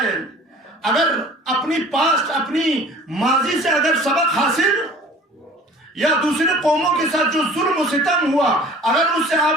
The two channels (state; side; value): normal; both; correlation 0.46